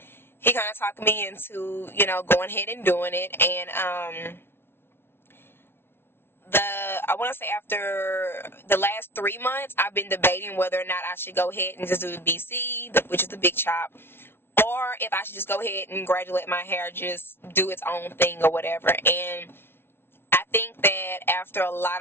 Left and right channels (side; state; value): right; late; 0.11 ms